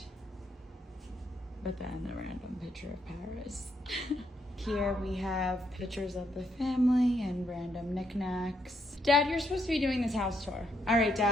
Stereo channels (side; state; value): both; normal; correlation 0.76